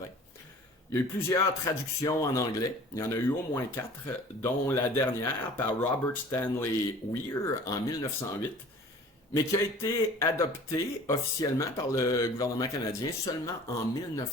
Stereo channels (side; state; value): both; normal; correlation 0.47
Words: Il y a eu plusieurs traductions en anglais. Il y en a eu au moins 4, dont la dernière par Robert Stanley Weir en 1908, mais qui a été adoptée officiellement par le gouvernement canadien seulement en